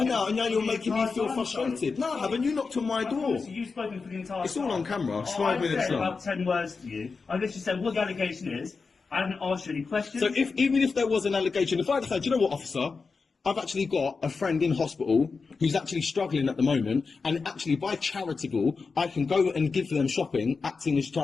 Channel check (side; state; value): right; quieter; 4.6 dB